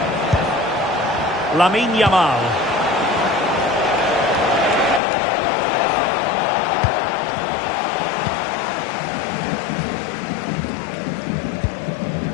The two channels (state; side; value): drops out; right; at 5.0 s